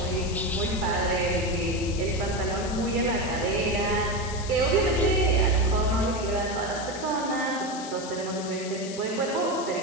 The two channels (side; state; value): left; noise; hiss, 12 dB below the sound